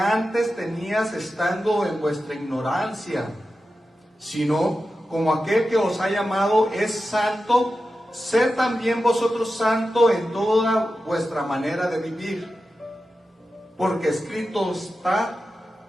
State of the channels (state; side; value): normal; both; correlation 0.92